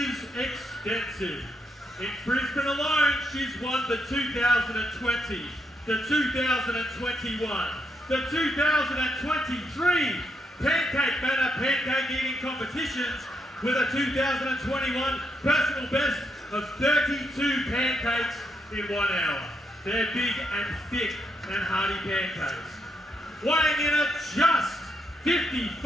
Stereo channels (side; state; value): both; normal; correlation 0.79